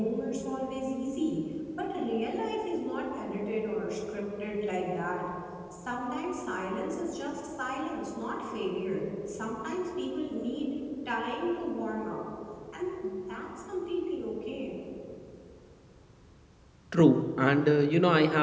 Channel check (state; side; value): identical; both; correlation 1.00